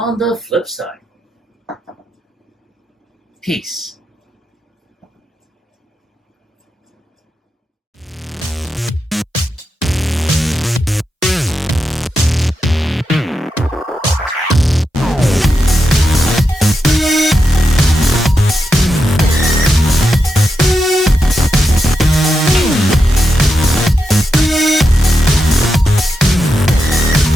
the flip side. Peace.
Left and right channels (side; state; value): both; normal; correlation 0.87